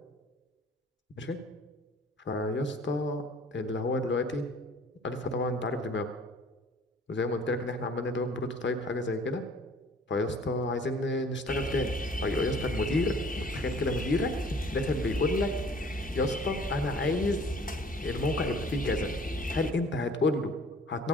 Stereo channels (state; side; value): normal; both; correlation 0.53